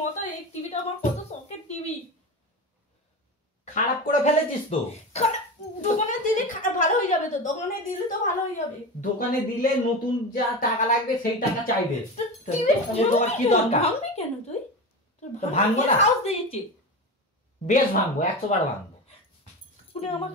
এই টিভিটা আমার কত শখের টিভি। খারাপ করে ফেলেছিস তো। দোকানে দিলে ভালো হয়ে যাবে। তো দোকানে দিলে তো ভালো হয়ে যাবে। দোকানে দিলে নতুন যা টাকা লাগবে সেই টাকা চাইবে। তোমার কি দরকার? ভাঙবি কেন তুই? ভাঙবো না। সাহস দিয়েছি। বেশ ভাঙবো, 100 বার ভাঙবো। তুই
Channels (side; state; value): both; normal; correlation 0.25